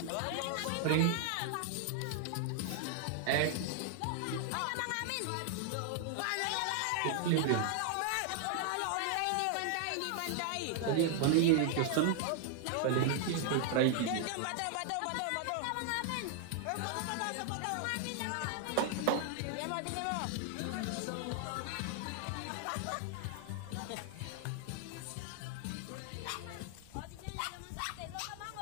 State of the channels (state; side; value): different; both; correlation 0.00